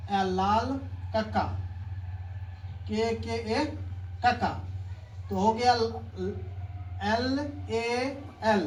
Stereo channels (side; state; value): both; identical; correlation 1.00